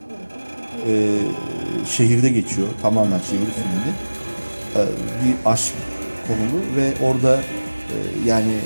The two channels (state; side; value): inverted; both; correlation -1.00